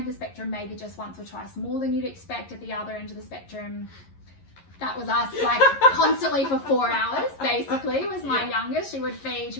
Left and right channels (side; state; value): right; late; 11 ms